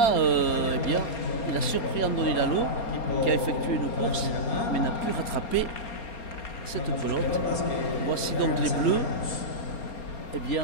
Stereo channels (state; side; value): late; right; 4.3 ms